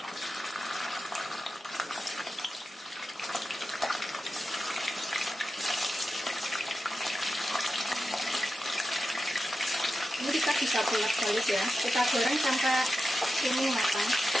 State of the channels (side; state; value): both; normal; correlation 0.91